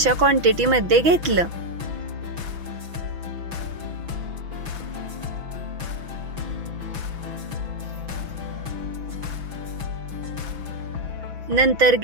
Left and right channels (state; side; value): late; left; 6.0 ms